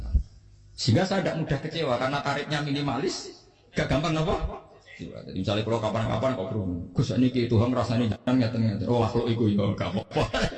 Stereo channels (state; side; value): identical; both; correlation 1.00